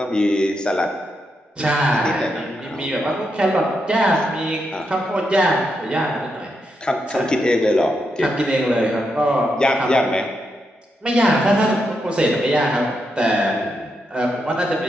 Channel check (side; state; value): both; normal; correlation 0.83